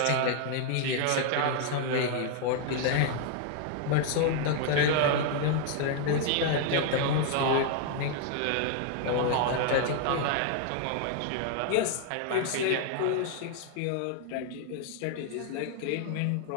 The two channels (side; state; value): both; different; correlation 0.00